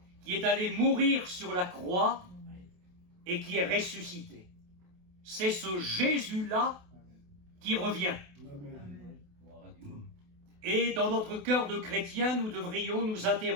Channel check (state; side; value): late; left; 28 ms